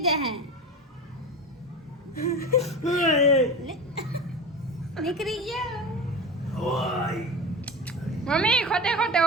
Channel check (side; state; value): both; normal; correlation 0.27